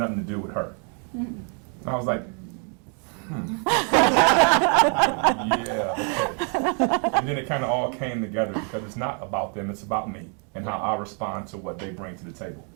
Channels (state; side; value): quieter; left; 39.7 dB